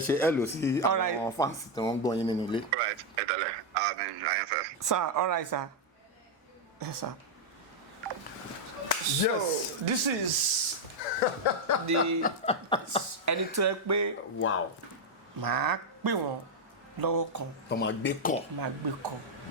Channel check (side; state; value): both; normal; correlation 0.00